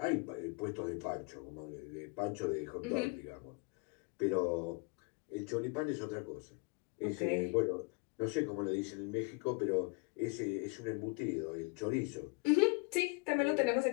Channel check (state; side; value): quieter; right; 30.3 dB